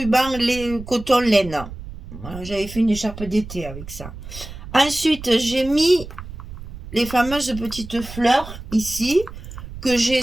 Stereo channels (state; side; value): noise; right; rumble, 13 dB below the sound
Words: coton laine. Voilà, j'avais fait une écharpe d'été avec ça. Ensuite, j'ai mis les fameuses petites fleurs ici, que j'ai